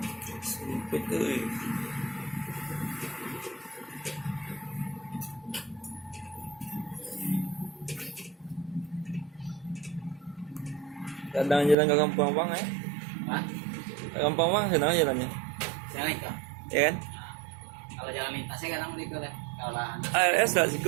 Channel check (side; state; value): left; drops out; at 11.8 s